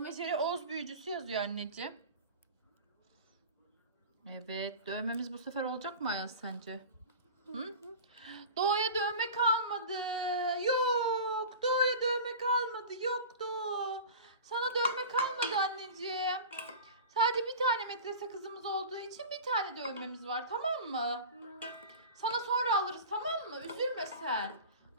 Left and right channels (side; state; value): both; inverted; correlation -0.35